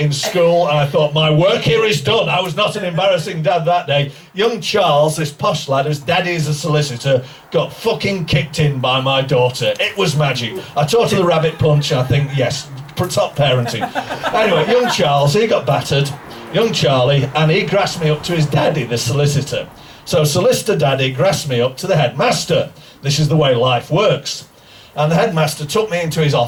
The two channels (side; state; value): both; identical; correlation 1.00